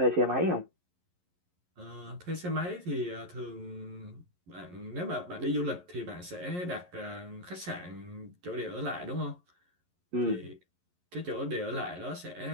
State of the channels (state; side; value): late; left; 11 ms